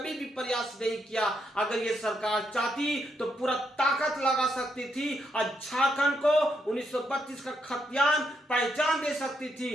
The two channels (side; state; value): both; normal; correlation 0.78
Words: भी प्रयास नहीं किया। अगर ये सरकार चाहती तो पूरा ताकत लगा सकती थी और झारखंड को 1932 का खतियान पहचान दे सकती